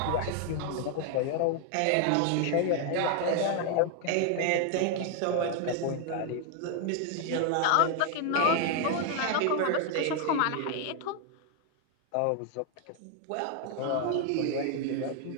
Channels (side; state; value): both; different; correlation 0.00